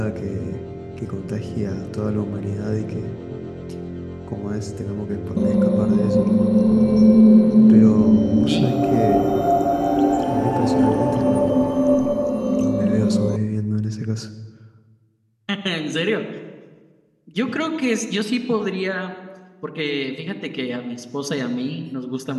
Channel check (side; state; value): both; identical; correlation 1.00